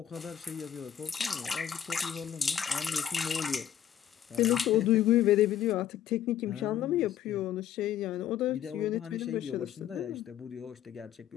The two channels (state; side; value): quieter; right; 10.1 dB